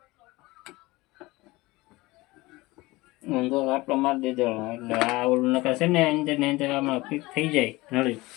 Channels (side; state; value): right; quieter; 21.0 dB